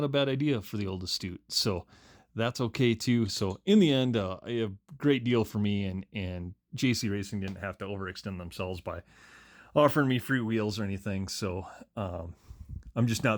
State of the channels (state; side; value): identical; both; correlation 1.00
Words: a bad idea for the old Astute. So that's okay too. So in the end, a great deal for me, and JC Racing didn't have to overextend themselves by offering me free wheels or anything. So I'm just